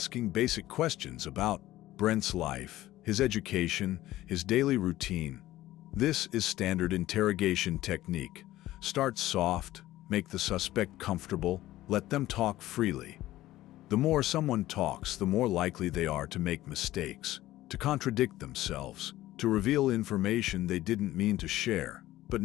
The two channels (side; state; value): right; quieter; 15.7 dB